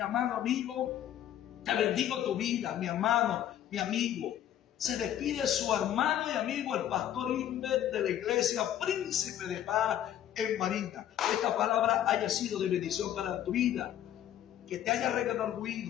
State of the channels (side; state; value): right; quieter; 11.2 dB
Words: amado amigo, te bendigo tu vida, mi hermano, mi amigo. Se despide su hermano y amigo, el pastor Inver de la iglesia Príncipe de Paz en Barinas. Esta palabra haya sido de bendición para tu vida, que te haya